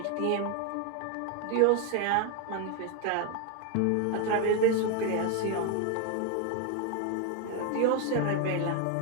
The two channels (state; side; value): different; both; correlation 0.02